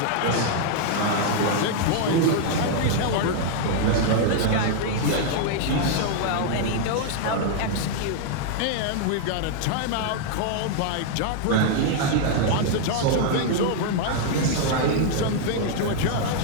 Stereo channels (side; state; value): both; different; correlation 0.00